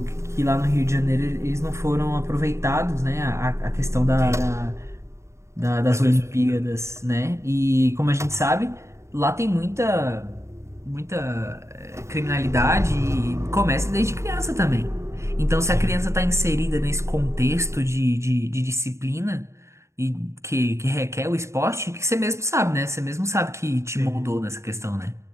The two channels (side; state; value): left; late; 0.14 ms